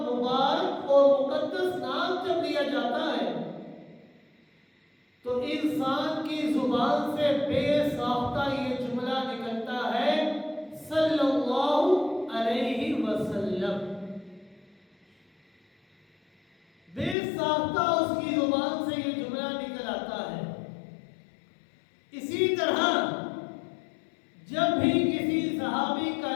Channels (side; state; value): right; drops out; at 17.2 s